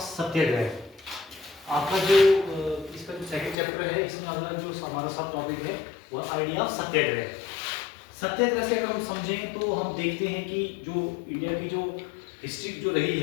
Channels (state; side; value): drops out; right; at 3.6 s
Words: सत्याग्रह आपका जो इसका जो सेकंड चैप्टर है, इसमें अगला जो हमारा सब टॉपिक है वो आइडिया ऑफ सत्याग्रह। सत्याग्रह से अगर हम समझें तो हम देखते हैं कि जो इंडिया की जो हिस्ट्री जो रही